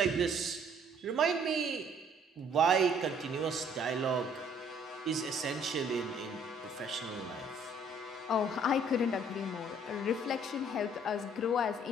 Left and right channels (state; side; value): normal; both; correlation 0.60